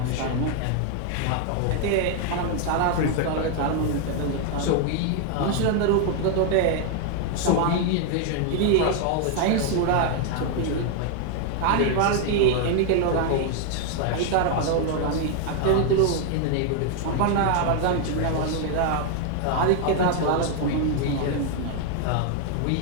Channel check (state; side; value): different; both; correlation 0.00